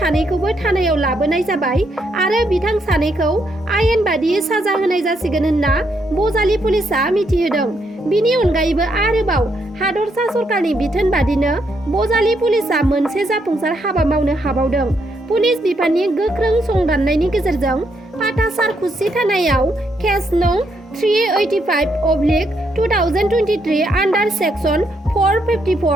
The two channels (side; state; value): both; normal; correlation 0.76